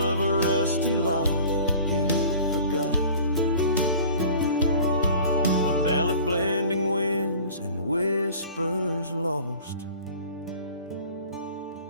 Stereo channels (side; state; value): both; inverted; correlation -0.44